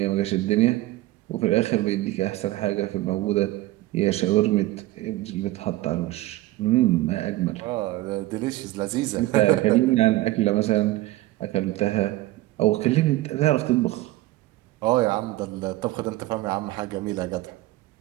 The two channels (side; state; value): left; quieter; 17.6 dB